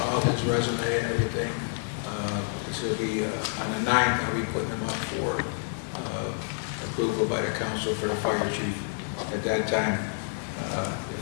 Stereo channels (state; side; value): silent; right; 59 dB below the other